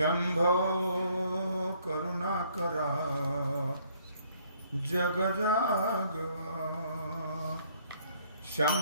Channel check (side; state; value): both; inverted; correlation -0.64